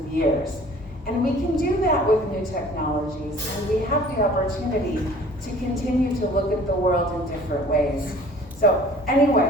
years. And we can do that with new technologies, and we have the opportunity to continue to look at the world in different ways. So anyway,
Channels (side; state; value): both; normal; correlation 0.49